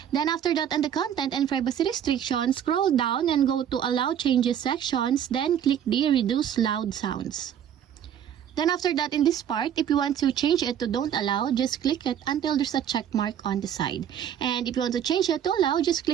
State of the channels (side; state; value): left; quieter; 9.5 dB